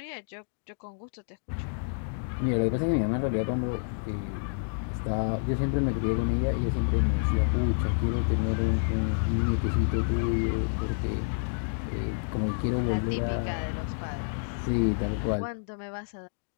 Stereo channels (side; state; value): right; silent; digital silence